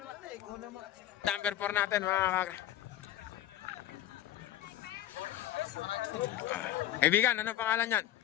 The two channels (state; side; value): quieter; right; 13.0 dB